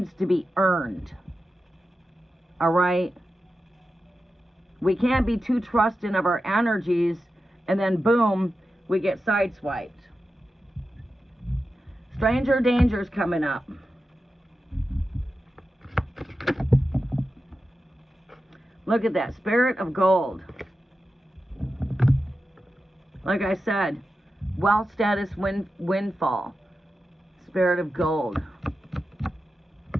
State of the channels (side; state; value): both; normal; correlation 0.91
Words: to be earned. All right? We can't be too trusting of our energies and then boom, we get sideswiped. Stranger danger's coming up. Look at that, Spirit of Gold. Like I said, wealth status windfall. Spirit of Gold.